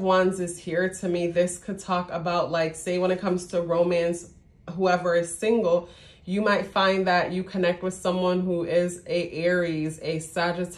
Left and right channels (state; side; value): identical; both; correlation 1.00